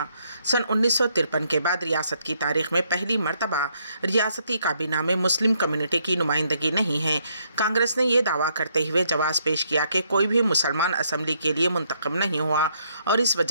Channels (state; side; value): inverted; both; correlation -0.72